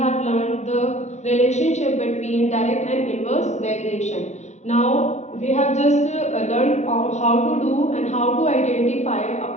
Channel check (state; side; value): late; right; 0.33 ms